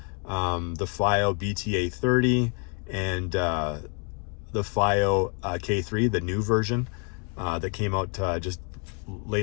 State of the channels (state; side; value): quieter; right; 37.9 dB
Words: the FiiO BTA30, and the FiiO K3, the new version that came out just